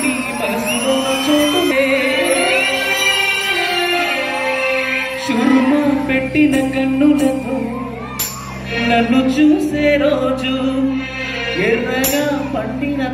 మనసులో చోటునే చురుము పెట్టిన కన్నులతో నన్ను చూసే రోజు ఎర్రగా పండిన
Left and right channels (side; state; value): both; identical; correlation 1.00